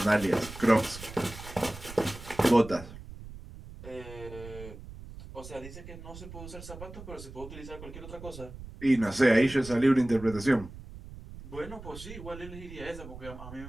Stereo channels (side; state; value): right; noise; rumble, 14 dB below the sound